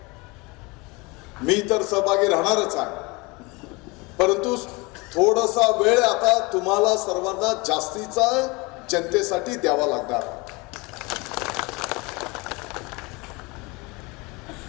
मी तर सहभागी राहणारच आहे, परंतु थोडासा वेळ आता तुम्हाला सर्वांना जास्तीचा जनतेसाठी द्यावा लागणार,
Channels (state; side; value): quieter; right; 26.1 dB